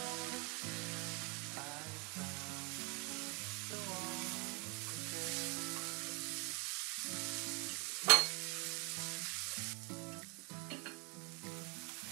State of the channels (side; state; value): left; quieter; 30.5 dB